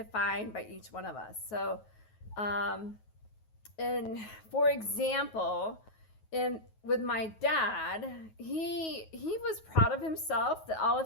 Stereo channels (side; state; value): right; late; 9.3 ms